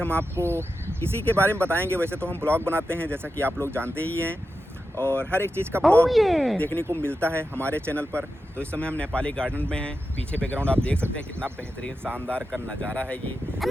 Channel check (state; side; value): normal; both; correlation 0.90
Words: आपको इसी के बारे में बताएंगे। वैसे तो हम ब्लॉग बनाते हैं, जैसा कि आप लोग जानते ही हैं, और हर एक चीज़ का ब्लॉग देखने को मिलता है हमारे चैनल पर। तो इस समय हम नेपाली गार्डन में हैं। पीछे बैकग्राउंड आप देख सकते हैं, कितना बेहतरीन शानदार का नज़ारा है ये।